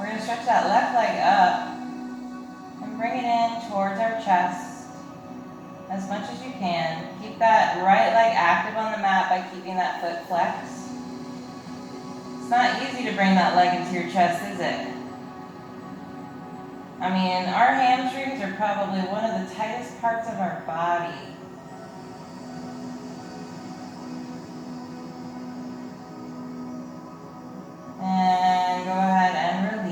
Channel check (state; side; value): identical; both; correlation 1.00